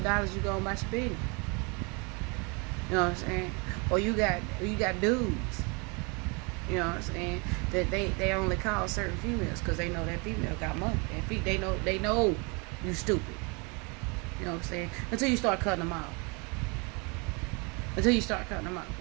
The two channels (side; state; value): left; quieter; 31.0 dB